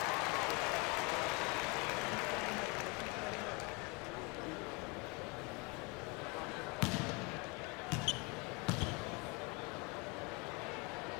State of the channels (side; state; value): right; quieter; 29.4 dB